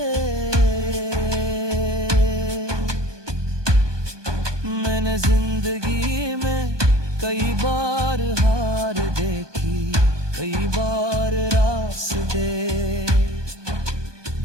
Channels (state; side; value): late; left; 1.2 ms